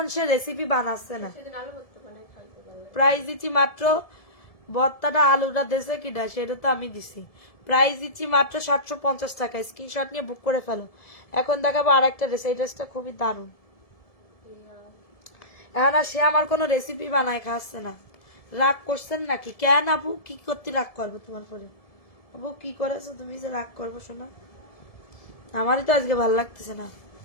সে রেসিপি বানাচ্ছে না। সেদিন আলু ভর্তা বানাই খাইতে পারলে। প্রাইস দিচ্ছি মাত্র, ভর্তাটা আলুটা দেশে কিনা সেটা তো আমি দিছি। প্রাইস দিচ্ছি মাত্র 750 টাকা। স্ক্রিনশট নিয়ে বুক করে ফেলো। এখন দেখাবো আর একটা ড্রেস, এই ড্রেসটা খুবই দারুণ। এখন আর সে আমার কোনো রেসিপি বানায় খাওয়াচ্ছে না। রাগ করছেন নাকি? কেন আপু, কি করতে রাগ করবো তোমার পরে? আপু কি করেছো তুমি যে রাগ করবো? শোনা, আমারই তো আজকে ভালো লাগতেছে না।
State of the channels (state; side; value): late; right; 1.7 ms